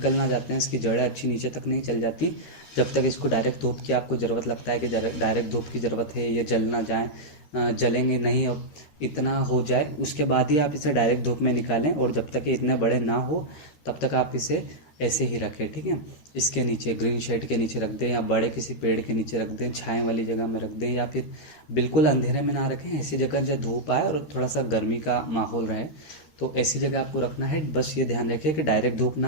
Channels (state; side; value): late; right; 13 ms